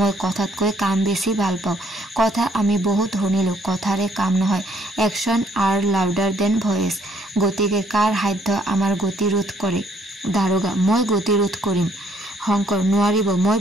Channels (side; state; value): both; normal; correlation 0.66